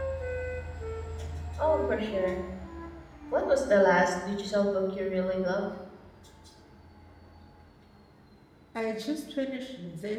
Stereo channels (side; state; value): both; identical; correlation 1.00